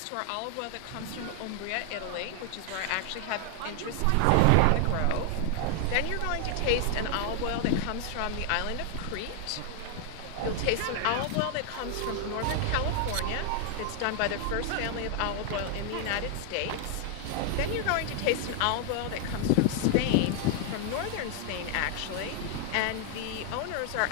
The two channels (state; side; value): different; both; correlation 0.00